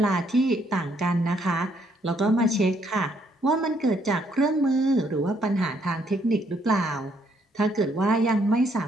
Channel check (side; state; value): both; normal; correlation 0.70